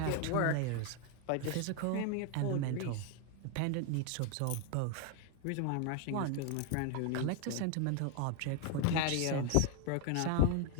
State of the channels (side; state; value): both; different; correlation 0.01